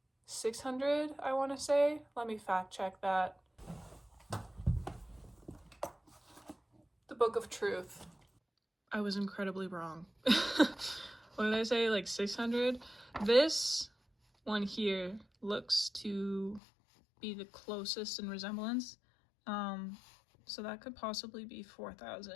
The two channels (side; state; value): right; drops out; at 16.6 s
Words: 600, I want to say. Let me fact check that. The Book of Truth. I was incredibly wrong. What did I say? Like 600? This one here looks to be the closest in resemblance. So that could possibly be